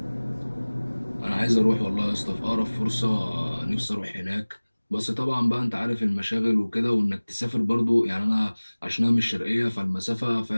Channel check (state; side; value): inverted; both; correlation -1.00